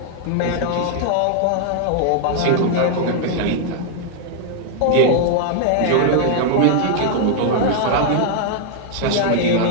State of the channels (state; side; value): different; both; correlation 0.00